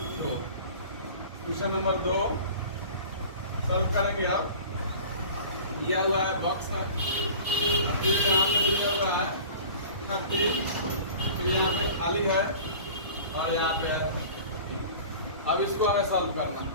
2। Question number 2 solve करेंगे। अब दिया हुआ है बॉक्स है, फिर यहाँ पे दिया हुआ है 36, फिर यहाँ पे खाली है और यहाँ पे है। अब इसको हमें सॉल्व करना।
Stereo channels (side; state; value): both; inverted; correlation -0.41